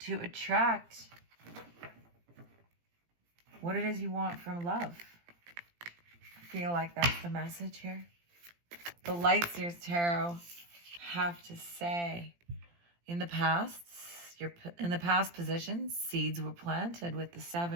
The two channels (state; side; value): late; left; 17 ms